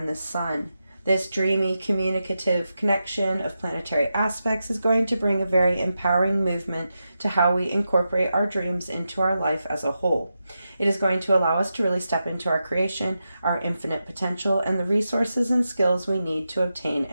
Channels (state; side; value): inverted; both; correlation -0.89